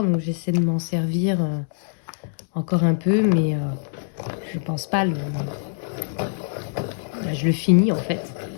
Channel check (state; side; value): silent; right; 63 dB below the other